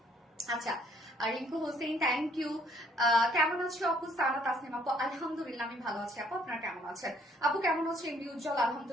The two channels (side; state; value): both; normal; correlation 0.64